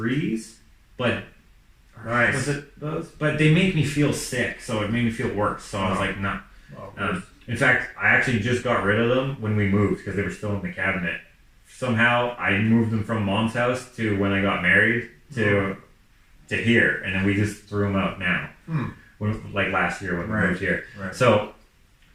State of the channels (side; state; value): both; identical; correlation 1.00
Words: but Nice. was it those? But they make me feel sick, so it made me feel worse. So I was like, nah. In fact, I actually just got rid of them when we moved because they were still in the cabinet. Somehow I moved them from Mom's house to when I got married to here, and then we just threw them out now. When, like last year when we moved here. Right. So